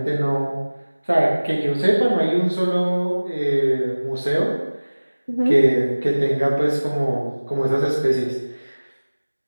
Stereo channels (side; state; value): both; inverted; correlation -1.00